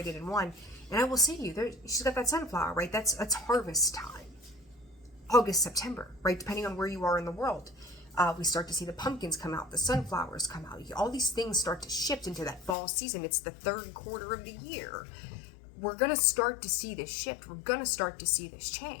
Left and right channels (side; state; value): right; drops out; at 12.8 s